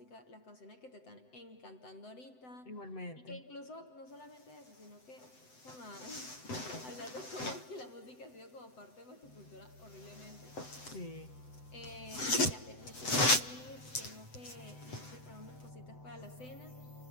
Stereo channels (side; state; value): right; late; 7.9 ms